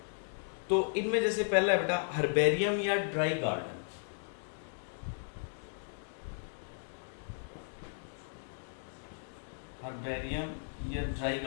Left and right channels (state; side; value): silent; right; digital silence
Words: तो इनमें जैसे पहला है बेटा हर्बेरियम या ड्राई गार्डन। हर्बेरियम या ड्राई